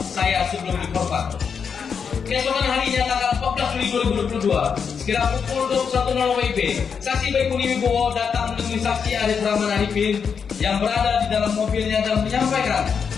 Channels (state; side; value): quieter; right; 6.4 dB